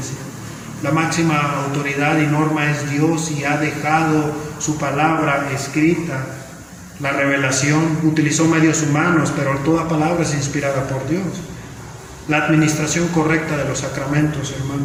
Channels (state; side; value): identical; both; correlation 1.00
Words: La máxima autoridad y norma es Dios y ha dejado su palabra escrita. La revelación utilizó medios humanos, pero toda palabra es inspirada por Dios. La administración correcta de los sacramentos,